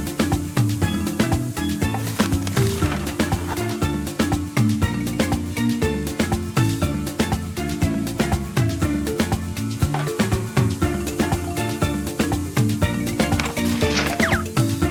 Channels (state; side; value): identical; both; correlation 1.00